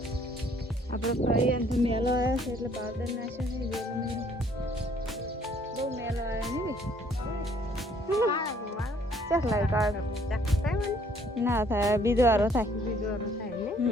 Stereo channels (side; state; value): both; normal; correlation 0.62